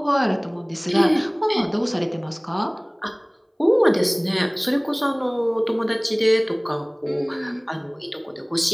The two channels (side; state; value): both; identical; correlation 1.00